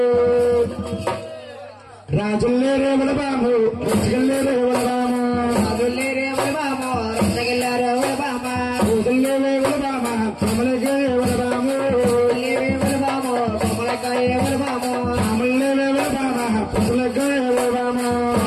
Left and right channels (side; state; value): both; identical; correlation 1.00